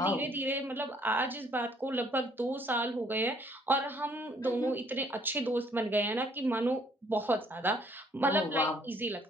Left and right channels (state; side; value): normal; both; correlation 0.63